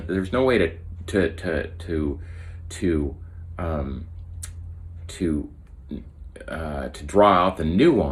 draw out the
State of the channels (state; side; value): identical; both; correlation 1.00